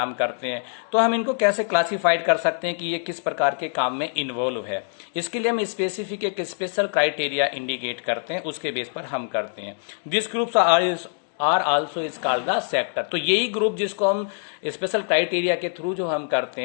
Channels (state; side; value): silent; right; digital silence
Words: करते हैं, तो हम इनको कैसे क्लासिफाइड कर सकते हैं कि ये किस प्रकार के काम में इन्वॉल्व है। इसके लिए हम स्पेसिफिक एक स्पेशल क्राइटेरिया इंडिकेट करते हैं, उसके बेस पर हम करते हैं। This groups are also is called the sector. तो यही ग्रुप जिसको हम स्पेशल क्राइटेरिया के थ्रू जो हम करते